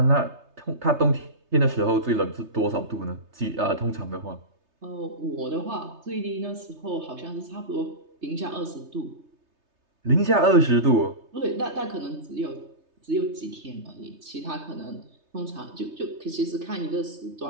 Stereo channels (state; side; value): late; left; 3.3 ms